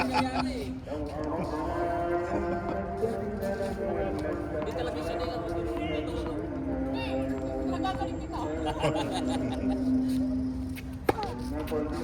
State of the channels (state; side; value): identical; both; correlation 1.00